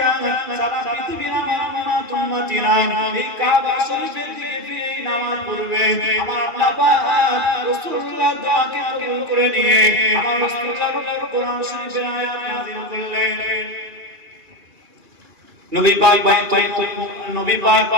সারা পৃথিবীর আমার উম্মতিরা এই কাবা শরীফের দিকে ফিরে নামাজ পড়বে। আমার আল্লাহ পাক রাসূলুল্লাহর দোয়াকে কবুল করে নিয়ে আমার রাসূলুল্লাহর উপর কোরআন শরীফের আয়াত নাযিল করলেন। নবী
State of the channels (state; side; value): late; left; 2.4 ms